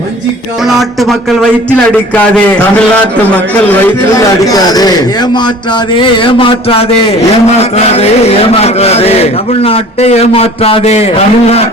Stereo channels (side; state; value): both; normal; correlation 0.46